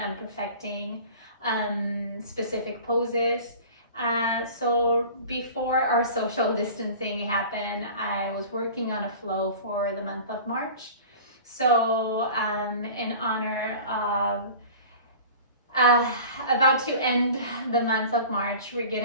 perfecting specific poses. So before our social distancing happened, I was working on a flow for the month of March. So in honor of about to end the month of March, we're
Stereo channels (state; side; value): inverted; both; correlation -0.40